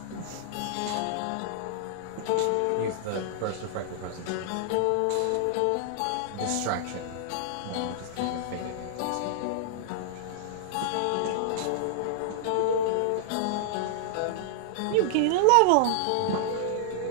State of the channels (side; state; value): both; different; correlation -0.01